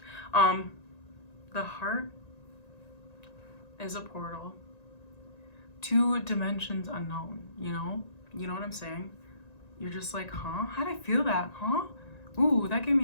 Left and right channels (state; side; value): late; right; 1.9 ms